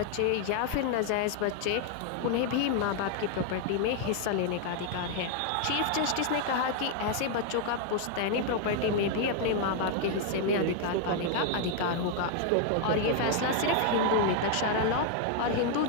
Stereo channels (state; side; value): different; both; correlation 0.00